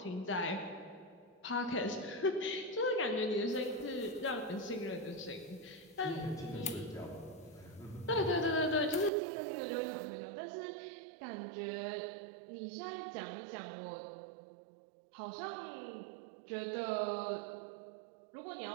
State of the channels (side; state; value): left; drops out; at 9.1 s